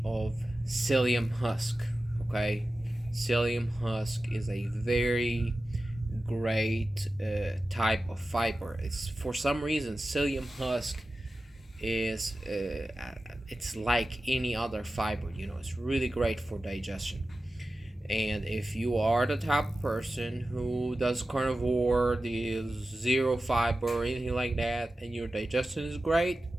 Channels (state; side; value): normal; both; correlation 0.94